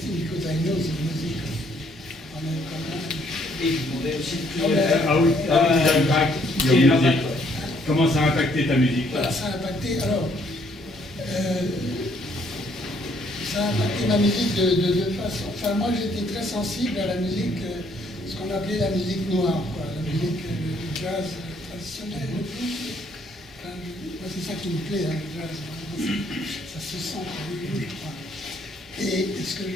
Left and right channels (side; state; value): both; normal; correlation 0.67